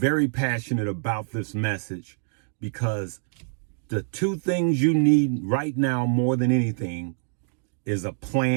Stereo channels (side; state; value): left; silent; digital silence